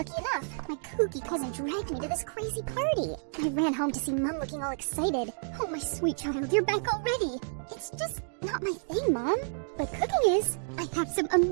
enough, my kooky cousin dragged me to this crazy party. I ran home to see Mom looking all excited. Oh, my sweet child, you're back already. It's just not my thing, Mom. But cooking is. I have some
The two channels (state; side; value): silent; left; digital silence